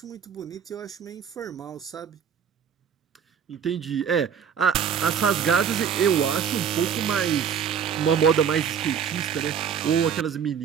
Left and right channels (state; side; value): quieter; left; 7.8 dB